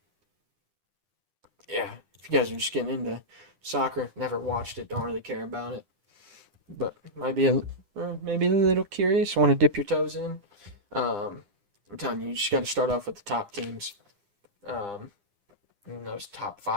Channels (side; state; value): left; late; 9.9 ms